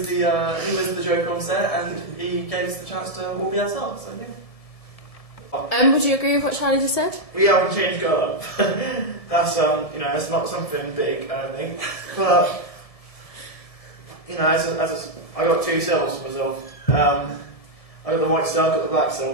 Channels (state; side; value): late; right; 1.7 ms